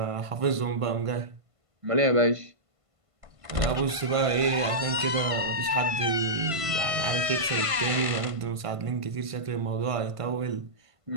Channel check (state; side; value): late; left; 1.5 ms